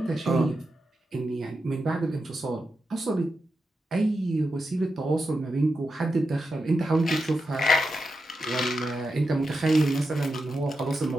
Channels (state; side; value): normal; both; correlation 0.88